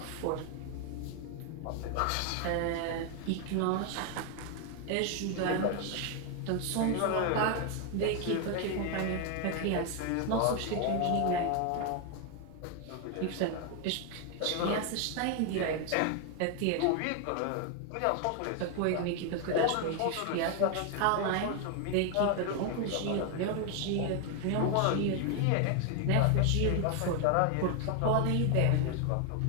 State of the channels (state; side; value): different; both; correlation 0.01